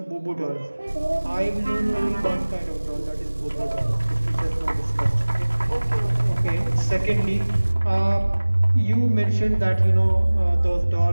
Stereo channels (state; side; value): inverted; both; correlation -1.00